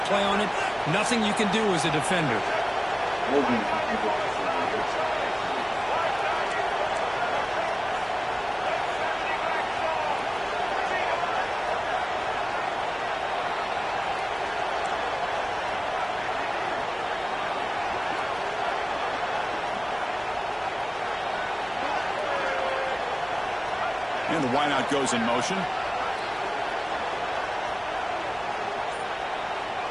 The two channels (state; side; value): identical; both; correlation 1.00